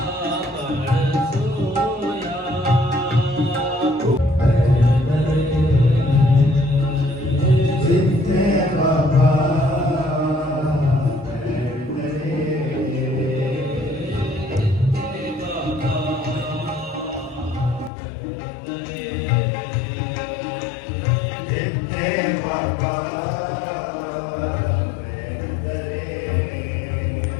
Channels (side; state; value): right; drops out; at 17.9 s